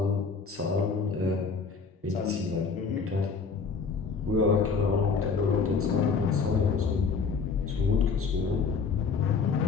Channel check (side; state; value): right; quieter; 5.2 dB